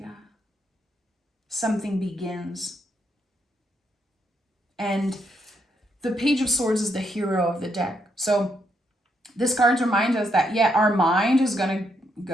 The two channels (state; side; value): normal; both; correlation 0.77